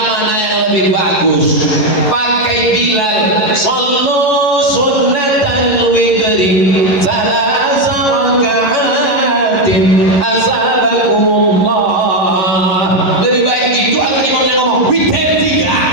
mana yang lebih bagus? Pakai Bilal, sallu sunnatan witri salasa raka'atin azabakumullah. Lebih baik itu atau imamnya ngomong witir 3?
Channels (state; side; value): late; right; 11 ms